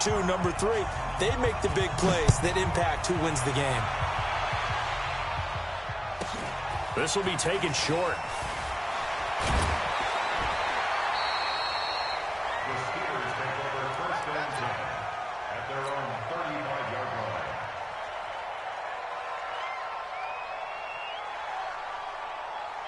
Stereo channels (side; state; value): both; identical; correlation 1.00